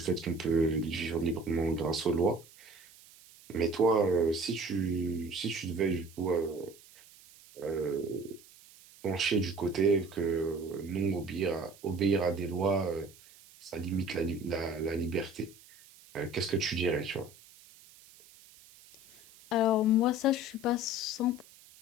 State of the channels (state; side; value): noise; right; hiss, 23 dB below the sound